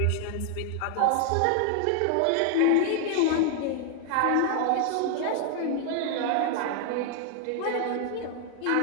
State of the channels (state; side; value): different; both; correlation 0.00